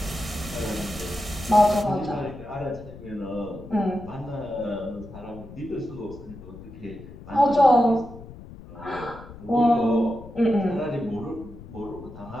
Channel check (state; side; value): noise; left; rumble, 16 dB below the sound